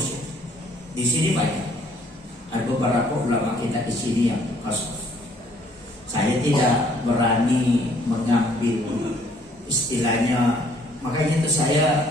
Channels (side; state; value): both; normal; correlation 0.62